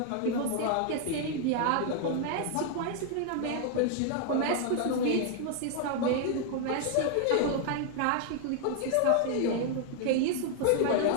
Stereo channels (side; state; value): both; different; correlation 0.00